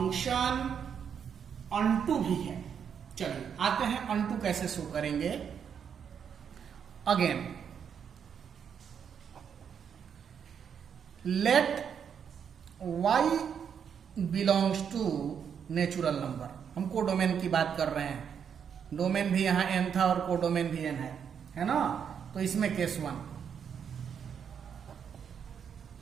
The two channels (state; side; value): quieter; left; 7.6 dB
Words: अनटू भी है। चलिए आते हैं अनटू कैसे शो करेंगे। Again let y belongs to natural number. हम कोडोमेन की बात कर रहे हैं, डोमेन भी यहां n था और कोडोमेन भी n है ना? तो इसमें case 1,